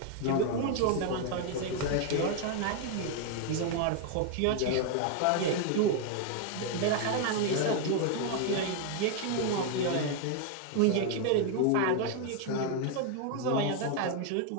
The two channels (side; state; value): both; different; correlation 0.00